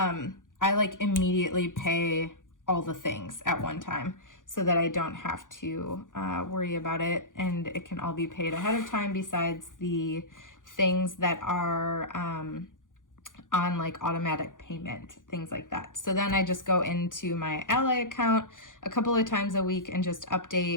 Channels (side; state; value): right; late; 0.88 ms